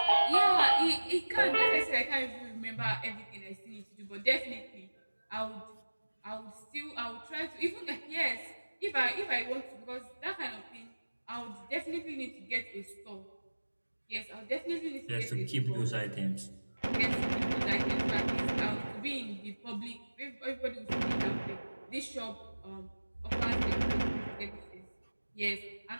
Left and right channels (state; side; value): inverted; both; correlation -1.00